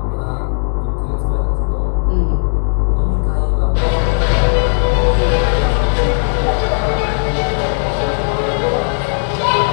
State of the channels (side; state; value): right; silent; 69 dB below the other